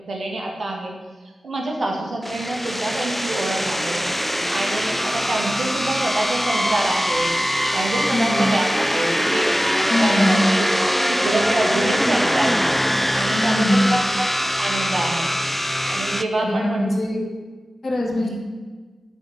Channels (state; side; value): normal; both; correlation 0.96